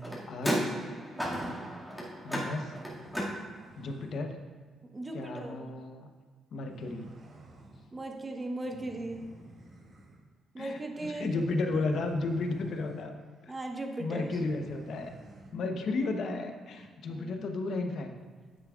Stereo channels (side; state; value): both; normal; correlation 0.81